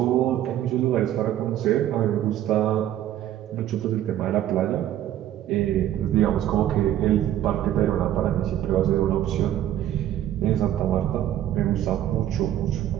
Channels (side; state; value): left; quieter; 12.1 dB